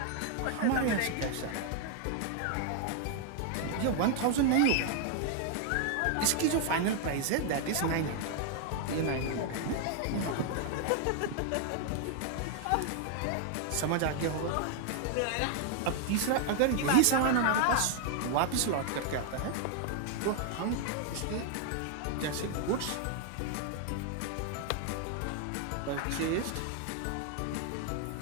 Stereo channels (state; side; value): different; both; correlation 0.00